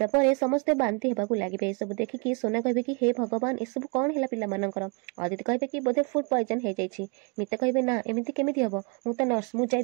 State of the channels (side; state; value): left; quieter; 32.8 dB